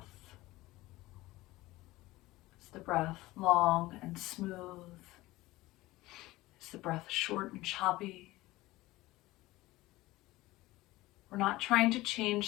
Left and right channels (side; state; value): right; quieter; 18.6 dB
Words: Is the breath long and smooth? Is the breath short and choppy? We're not trying to